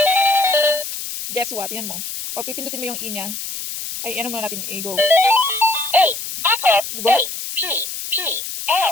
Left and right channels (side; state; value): left; noise; hiss, 7 dB below the sound